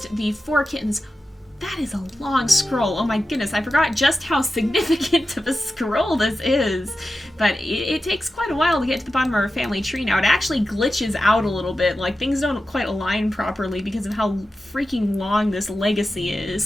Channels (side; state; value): both; normal; correlation 0.92